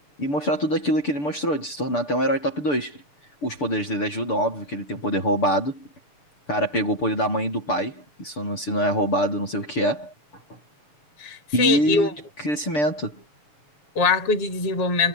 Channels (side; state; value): right; late; 6.8 ms